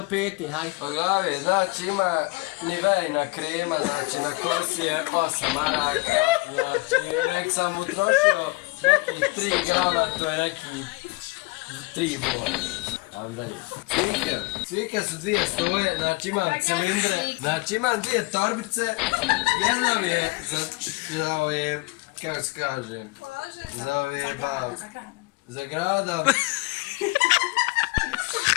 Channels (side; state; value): right; quieter; 24.9 dB